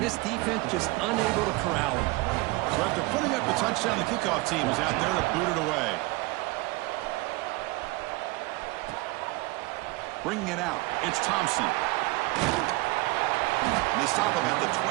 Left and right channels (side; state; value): left; quieter; 22.4 dB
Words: this defense just unable to corral him. So after putting up the touchdown, the kickoff team is out there to boot it away. Bringing it out, it's Thompson. And they stop him at the